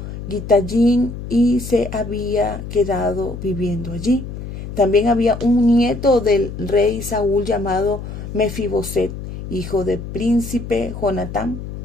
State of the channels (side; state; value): left; noise; hum, 9 dB below the sound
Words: Gitayín y se había quedado viviendo allí. También había un nieto del rey Saúl llamado Mefiboset, hijo del príncipe Jonatán,